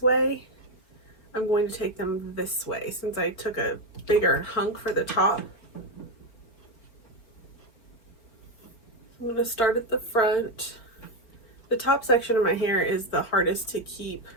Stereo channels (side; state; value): right; late; 4.2 ms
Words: way, I'm going to take them this way since I took a bigger hunk for the top. I'm going to start at the front. The top section of my hair is the hardest to keep